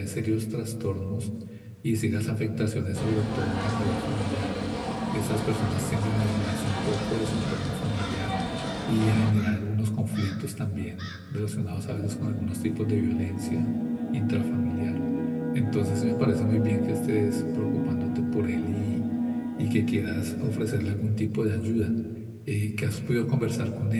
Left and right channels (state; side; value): identical; both; correlation 1.00